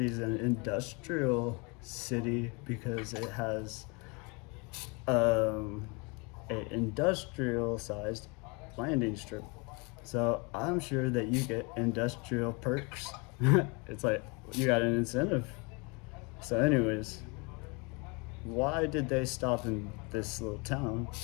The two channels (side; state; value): right; quieter; 30.2 dB